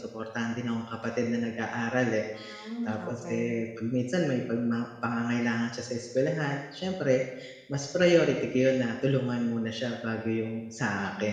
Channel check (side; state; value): both; identical; correlation 1.00